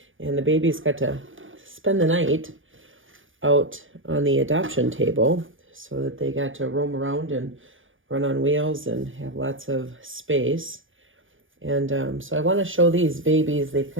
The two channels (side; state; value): left; late; 0.58 ms